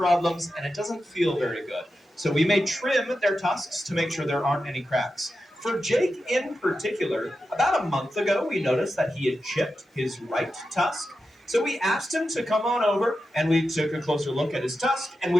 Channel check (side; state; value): both; normal; correlation 0.90